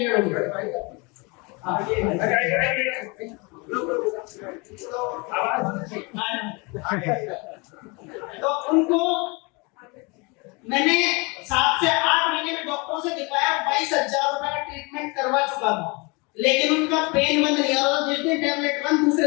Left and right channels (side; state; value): right; quieter; 28.7 dB